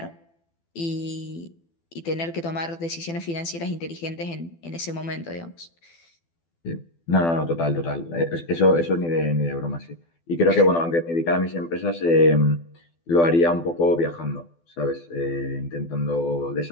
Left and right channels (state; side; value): late; right; 12 ms